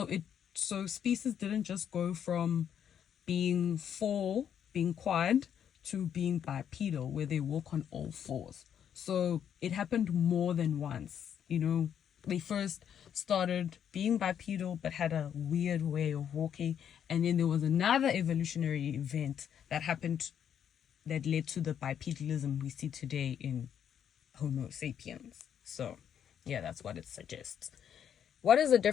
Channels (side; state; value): right; quieter; 8.9 dB